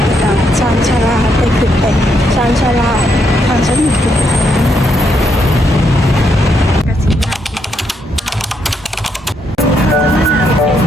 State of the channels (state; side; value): normal; both; correlation 0.77